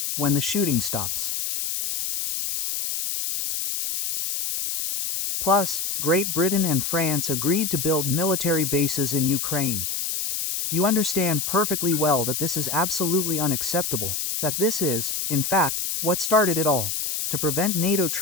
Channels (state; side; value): noise; left; hiss, 2 dB below the sound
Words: when the shooting stops. Plus, Great Britain and France agreed to build military bases in Ukraine. You understand perfectly well that this is absolutely unacceptable, that this is, in fact, what started it all, to prevent NATO